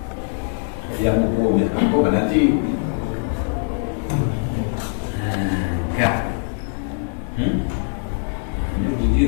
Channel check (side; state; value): right; silent; 64 dB below the other